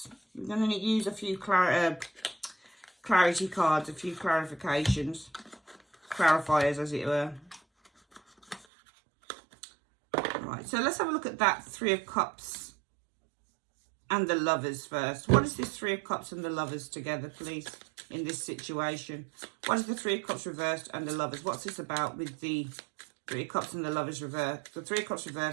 We're going to use a few clarity cards, a few clarifications, clarifiers as it were. Right, so let's have a look at that Three of Cups and the Lovers first. What is this Three of Cups and the Lovers together, please, in this situation? What is the Three of Cups reversed and the Lovers? What's this about with the Three of Cups and the Lovers reversed? The Three of Cups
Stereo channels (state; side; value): drops out; left; at 8.7 s